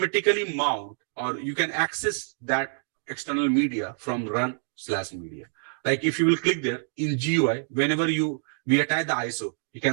mount, or you can access that external media from run/media. Like if you will click there in GUI, whenever we attach the ISO, you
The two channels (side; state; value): left; silent; digital silence